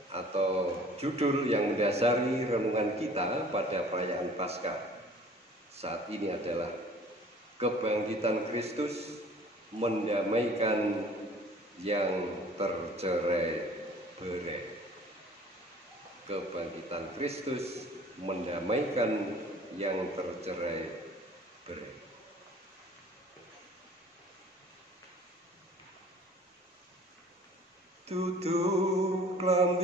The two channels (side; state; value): both; normal; correlation 0.50